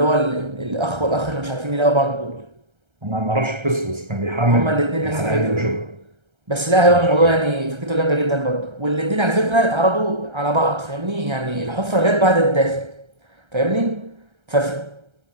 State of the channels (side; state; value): left; late; 1.3 ms